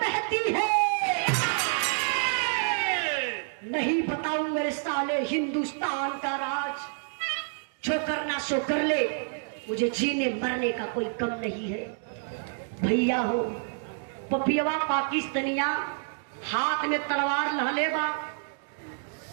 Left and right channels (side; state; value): left; silent; digital silence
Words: बहती है। नहीं बताऊं मेरे साले हिंदुस्तान का राज, जो करना सो कर ले, मुझे जीने मरने का कोई कम नहीं है। भैया हो पपियवा पाकिस्तानिया हाथ में तलवार लहले बा।